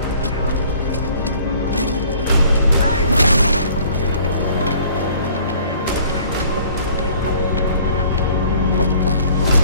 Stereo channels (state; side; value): inverted; both; correlation -0.54